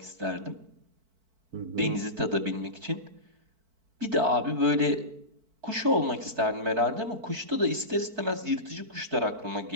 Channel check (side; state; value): left; late; 4.5 ms